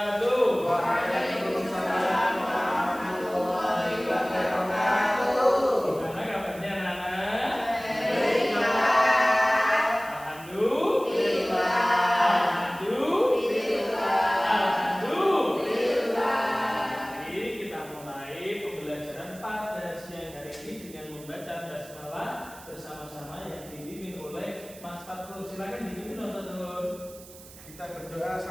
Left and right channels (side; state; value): right; noise; hiss, 19 dB below the sound